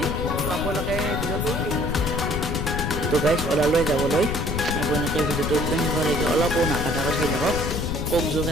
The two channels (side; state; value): left; noise; rumble, 2 dB below the sound